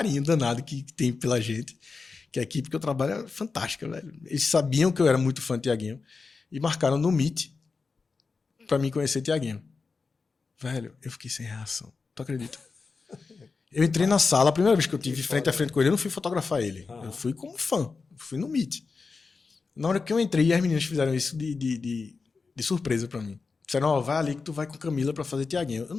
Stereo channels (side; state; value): right; quieter; 4.5 dB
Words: danado que tem pela gente, que a equipe que eu trabalho é fantástica, velho. Eles sabiam que eu era muito fã de Tiaguinho e marcaram no Meet pra mim conhecer Tiaguinho. Velho, eu fiquei sem reação. Tu acredita? Eu entrei na sala, a primeira vez que eu tive frente a frente com ele, eu não fui fotografar ele. Eu fui como fã. Fui no Meet. Na hora que eu entrei, as meninas fizeram isso de surpresa pra mim. Disseram, ó, vai ali que tu vai com Camila pra fazer Tiaguinho. Eu